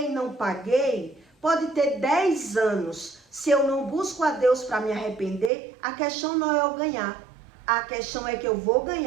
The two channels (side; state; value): left; drops out; at 5.5 s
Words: e não paguei, pode ter 10 anos. Se eu não busco a Deus para me arrepender, a questão não é eu ganhar. A questão é que eu vou